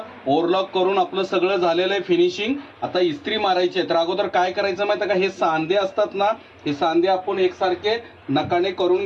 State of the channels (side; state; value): both; identical; correlation 1.00